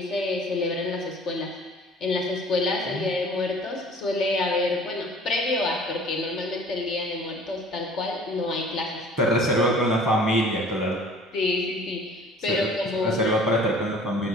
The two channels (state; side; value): normal; both; correlation 0.49